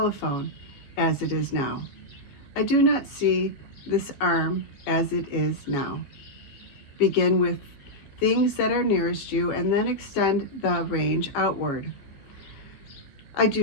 as it is now. I do not see this arm as it is now. Begin with things that are nearest you and then extend the range outward. I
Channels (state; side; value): late; right; 15 ms